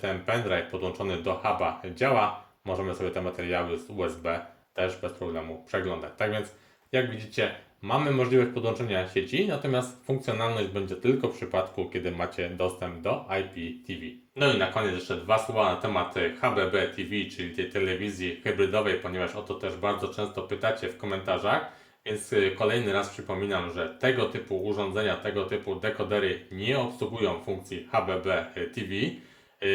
pendrive podłączony do huba działa. Możemy sobie te materiały z USB też bez problemu przeglądać. Tak więc jak widzicie, mamy możliwość podłączenia sieci, natomiast funkcjonalność będzie tylko w przypadku, kiedy macie dostęp do IPTV. No i na koniec jeszcze dwa słowa na temat HBB TV, czyli tej telewizji hybrydowej, ponieważ o to też bardzo często pytacie w komentarzach. Więc kolejny raz przypominam, że tego typu urządzenia, tego typu dekodery nie obsługują funkcji HBB TV.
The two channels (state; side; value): identical; both; correlation 1.00